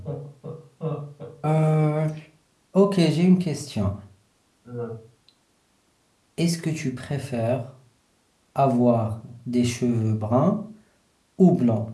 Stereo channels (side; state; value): both; identical; correlation 1.00